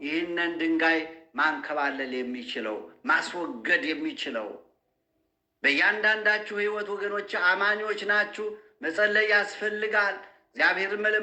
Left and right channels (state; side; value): identical; both; correlation 1.00